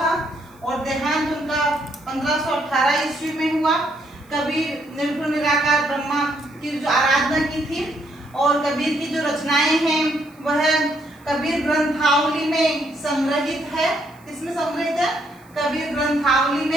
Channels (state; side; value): noise; left; hiss, 28 dB below the sound